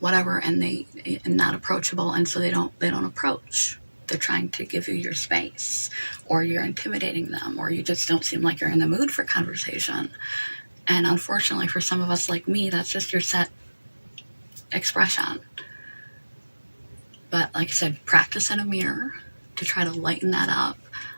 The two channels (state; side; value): inverted; both; correlation -1.00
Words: and they not approachable, and so they don't approach. They're trying to give you your space, or you're intimidating them, or you just don't seem like you're in the mood for conversation. And unfortunately for some of us like me, that's just your set expression. But like I said, practice in a mirror to try to lighten that up.